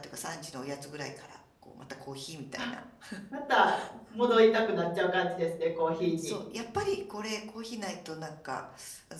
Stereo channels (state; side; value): identical; both; correlation 1.00